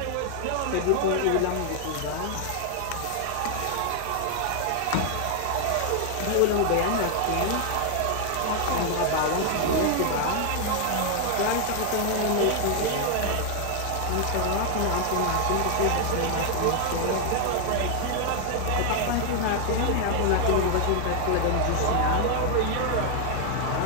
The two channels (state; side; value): different; both; correlation 0.00